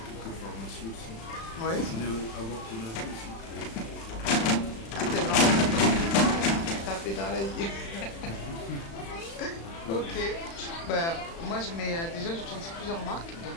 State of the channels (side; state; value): right; late; 36 ms